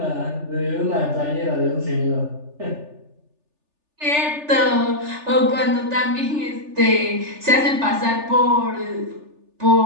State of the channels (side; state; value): left; late; 3.4 ms